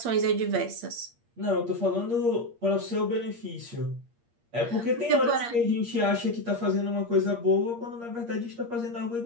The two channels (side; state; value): left; late; 8.5 ms